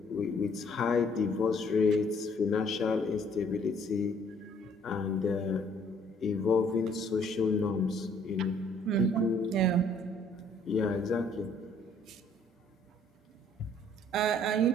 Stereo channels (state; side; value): normal; both; correlation 0.61